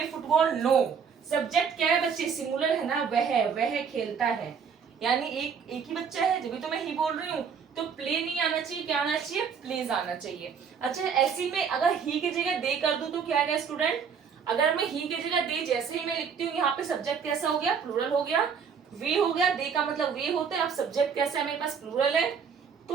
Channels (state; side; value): quieter; left; 6.6 dB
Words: फुटबॉल, नो। सब्जेक्ट क्या है बच्चे, सिंगुलर है ना, वह खेलता है, यानी एक ही बच्चा है, जब भी तो मैं ही बोल रही हूँ। तो प्ले नहीं आना चाहिए, क्या आना चाहिए, प्लेज आना चाहिए। अच्छा, ऐसी में अगर ही की जगह दे कर दूं तो क्या आएगा स्टूडेंट, अगर मैं ही की जगह दे जैसे ही मैं लिखती हूँ, यहाँ पे सब्जेक्ट कैसा हो गया, प्लूरल हो गया, वे हो गया, दे का मतलब वे होता है। अब सब्जेक्ट कैसा है, मेरे पास प्लूरल है,